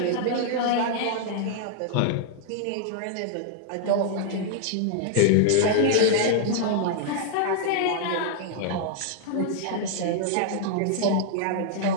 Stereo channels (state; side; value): different; both; correlation -0.01